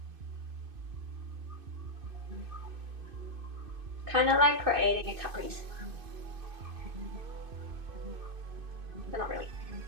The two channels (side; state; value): left; late; 2.5 ms